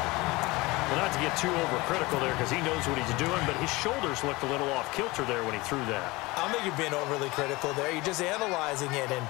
Well, not to get too overcritical there because he knows what he's doing, but his shoulders looked a little off-kilter there when he threw that. I don't think you're being overly critical there. You're just analyzing it, and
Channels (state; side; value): quieter; right; 22.2 dB